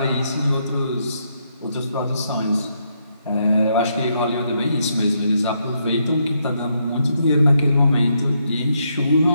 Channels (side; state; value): both; inverted; correlation -0.77